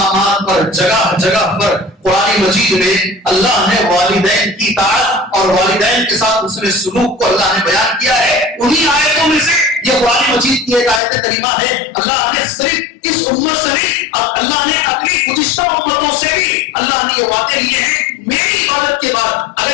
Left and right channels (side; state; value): right; drops out; at 11.0 s